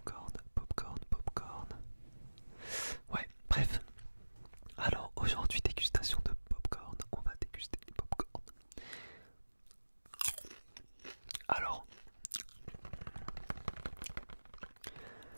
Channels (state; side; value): inverted; both; correlation -1.00